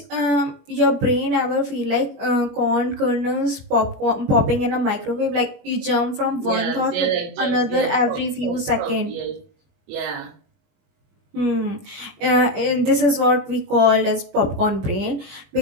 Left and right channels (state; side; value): late; left; 21 ms